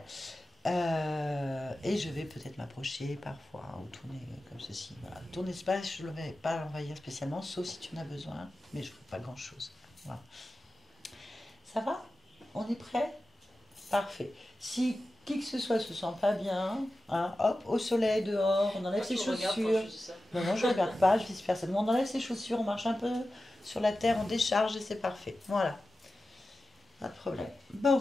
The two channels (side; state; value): both; normal; correlation 0.94